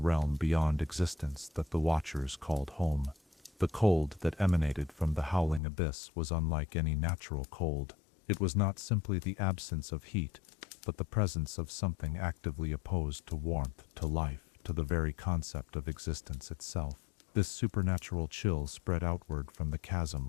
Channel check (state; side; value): drops out; right; at 5.6 s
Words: beyond existence that the Watchers called home. The cold that emanated from the Howling Abyss was unlike any natural cold. It was not simply the absence of heat, but the presence of something actively opposed to warmth, to life, to the very concept of existence itself. This supernatural chill spread outward from the